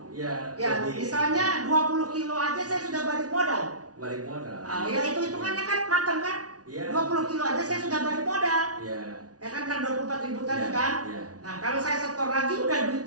Misalnya 20 kilo aja saya sudah balik modal. Ya itu hitungannya kan matang kan? 20 kilo aja saya sudah balik modal. Ya kan 24.000 tadi kan? Nah kalau saya setor lagi udah duit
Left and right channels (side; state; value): left; late; 0.68 ms